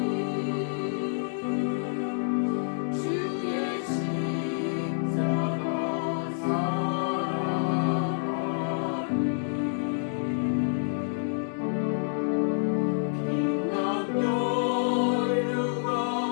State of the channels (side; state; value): right; silent; digital silence